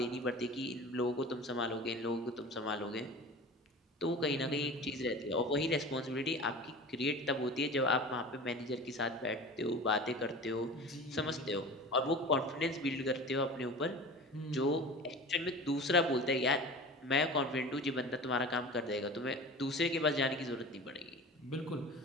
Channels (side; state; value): both; normal; correlation 0.36